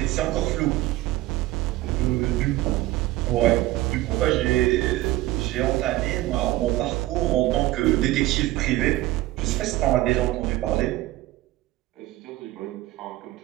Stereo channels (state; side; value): quieter; left; 17.1 dB